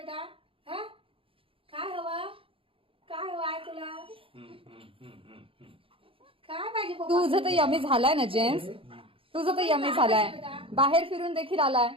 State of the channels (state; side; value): late; left; 0.26 ms